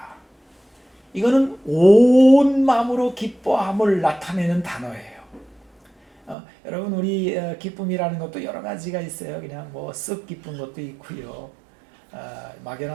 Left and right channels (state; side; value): drops out; left; at 6.4 s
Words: 이거는 온 마음으로 기뻐함을 나타내는 단어예요. 여러분, 우리 기쁨이라는 것도 여러 가지가 있어요. 그냥 쓱 기쁜 것도 있고요.